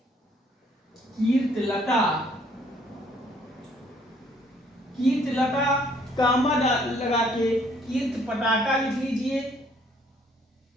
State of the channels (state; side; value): normal; both; correlation 0.63